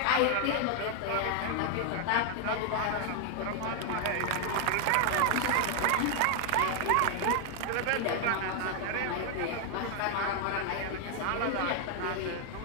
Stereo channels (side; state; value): both; different; correlation 0.00